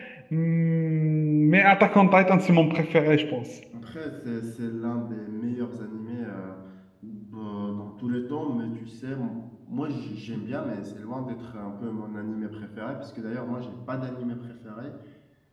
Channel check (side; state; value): both; identical; correlation 1.00